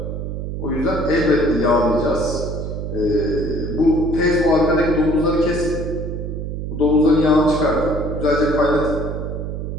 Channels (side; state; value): right; noise; hum, 5 dB below the sound